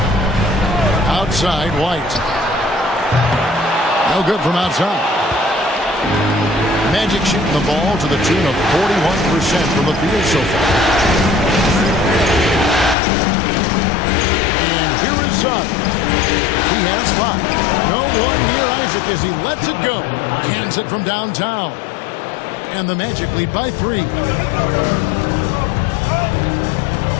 Outside, White. No good from outside. Magic shooting the ball to the tune of 41% from the field so far. And here is Suggs. He has 5. No one near Isaac as he lets it go. Cans it from downtown. And the Magic lead by 3.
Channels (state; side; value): drops out; right; at 13.0 s